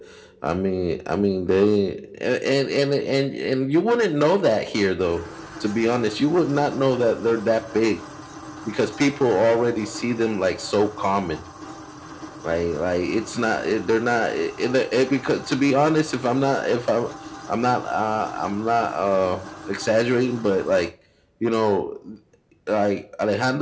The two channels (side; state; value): both; identical; correlation 1.00